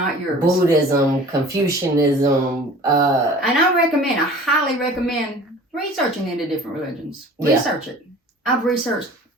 yours. Buddhism, Confucianism. And I highly recommend researching into different religions. Research it. I've researched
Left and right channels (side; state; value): both; normal; correlation 0.45